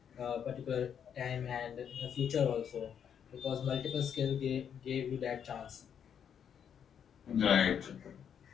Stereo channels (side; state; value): right; quieter; 8.2 dB